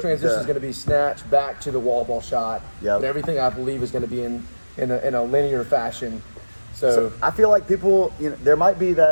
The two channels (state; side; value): inverted; both; correlation -1.00